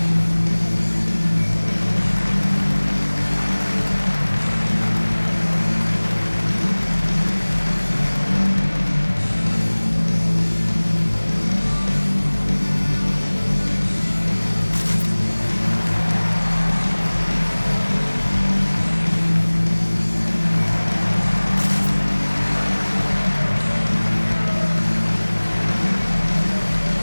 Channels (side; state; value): both; inverted; correlation -1.00